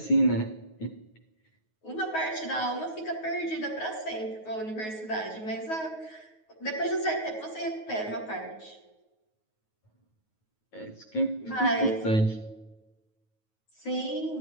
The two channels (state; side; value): late; right; 9.3 ms